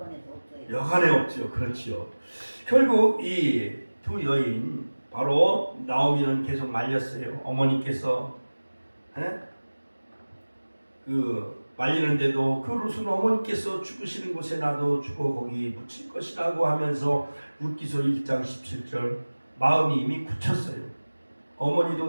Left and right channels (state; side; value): inverted; both; correlation -1.00